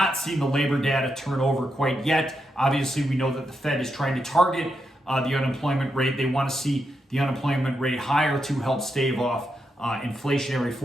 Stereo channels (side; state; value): both; normal; correlation 0.84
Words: seen the labor data turn over quite yet. Obviously, we know that the Fed is trying to target the unemployment rate. They want to see the unemployment rate higher to help stave off inflationary